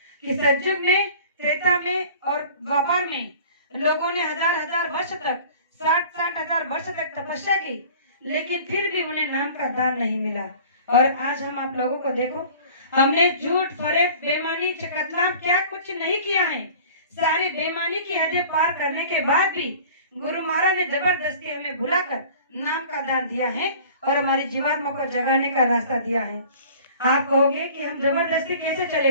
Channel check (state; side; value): inverted; both; correlation -0.45